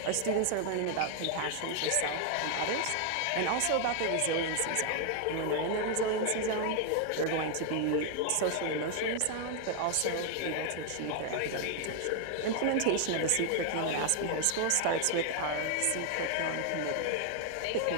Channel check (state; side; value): different; both; correlation 0.00